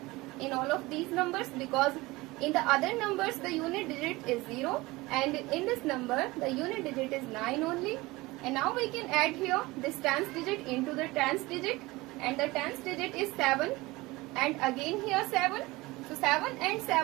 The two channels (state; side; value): quieter; left; 21.2 dB